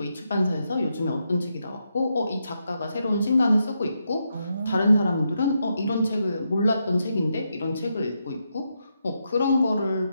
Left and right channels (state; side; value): inverted; both; correlation -0.83